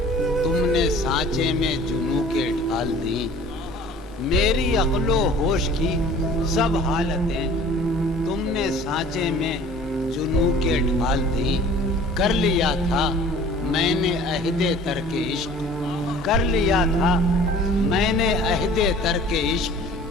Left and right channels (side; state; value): both; normal; correlation 0.48